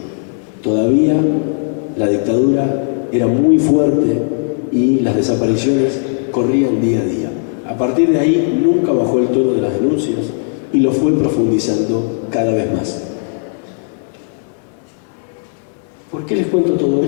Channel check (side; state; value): right; silent; 69 dB below the other